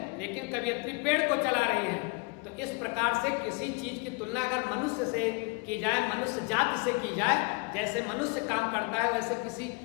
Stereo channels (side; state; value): right; quieter; 31.2 dB